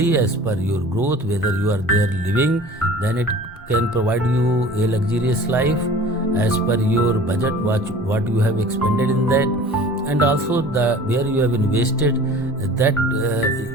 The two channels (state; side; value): normal; both; correlation 0.43